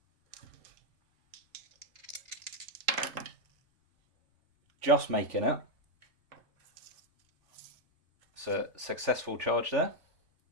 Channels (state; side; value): late; left; 3.4 ms